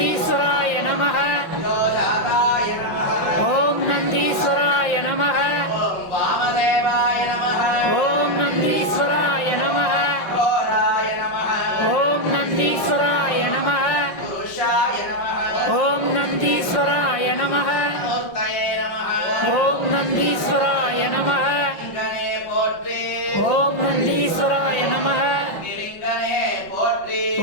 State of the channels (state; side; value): late; right; 5.5 ms